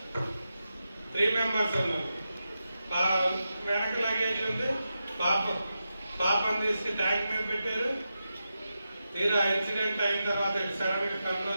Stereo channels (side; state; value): both; inverted; correlation -0.89